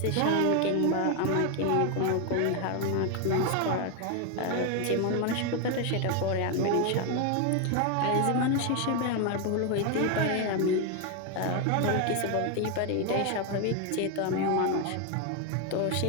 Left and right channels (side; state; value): both; different; correlation 0.01